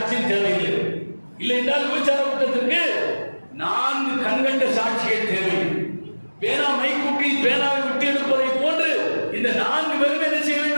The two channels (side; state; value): both; inverted; correlation -1.00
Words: தேவையில்லை. இல்லை என்றால் விபச்சார குற்றத்திற்கு 4 கண்கண்ட சாட்சிகள் தேவை. பேனா மைக்கூட்டில் பேனாவை விட்டு எடுப்பதை போன்று இந்த 4 பேரும் என்ன செய்ய